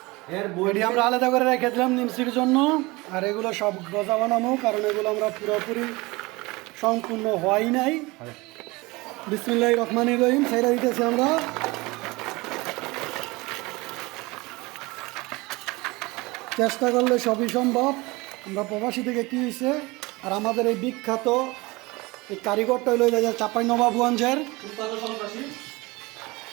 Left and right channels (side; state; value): left; quieter; 23.2 dB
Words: বডি আমরা আলাদা করে রেখে দিলাম নিমসির জন্য, আর এগুলো সব গজা বানাবো, কারণ এগুলো আমরা পুরোপুরি সম্পূর্ণ হয় নাই। বিসমিল্লাহির রহমানির রহিম ছাইরা দিতেছি আমরা। চেষ্টা করলে সবই সম্ভব। আমরা প্রবাসী থেকে কী হয়েছে, আর আমাদের এই বিখ্যাত এই কারিগরটা হইল চাঁপাইনবাবগঞ্জের